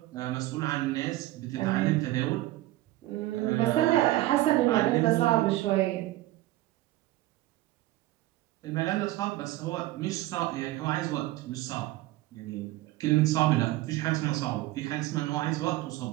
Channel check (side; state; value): left; quieter; 17.0 dB